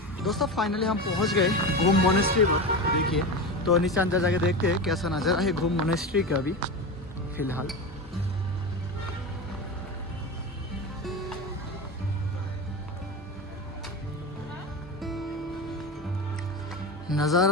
दोस्तों फाइनली हम पहुँच गए गोम मोनेस्ट्री पर। देखिए तो नीचे अंदर जाके देखते हैं कैसा नज़ारा है गोम मोनेस्ट्री का अभी फिलहाल।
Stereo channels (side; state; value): both; normal; correlation 0.23